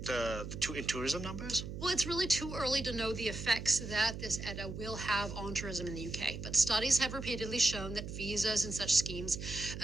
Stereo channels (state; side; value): noise; right; hum, 8 dB below the sound